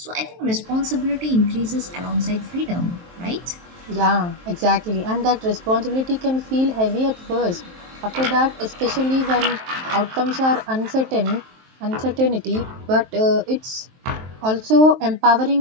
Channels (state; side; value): late; left; 23 ms